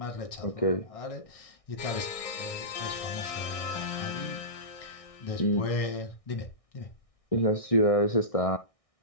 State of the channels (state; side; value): late; right; 1.6 ms